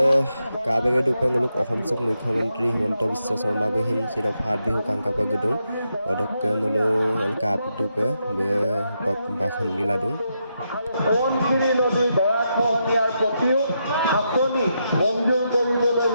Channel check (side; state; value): both; inverted; correlation -0.83